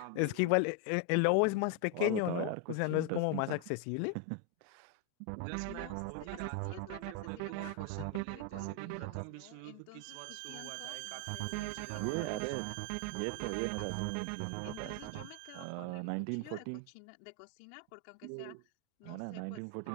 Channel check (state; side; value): different; both; correlation 0.01